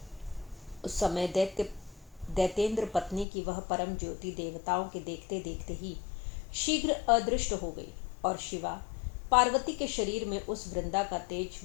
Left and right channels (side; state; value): right; drops out; at 3.2 s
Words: उस समय दैतेंद्र पत्नी की वह परम ज्योति देवताओं के देखते देखते ही शीघ्र अदृष्ट हो गई और शिवा पार्वती के शरीर में उस वृंदा का तेज